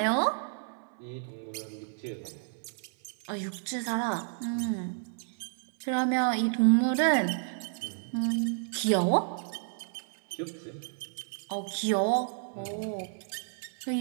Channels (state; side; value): silent; left; 57 dB below the other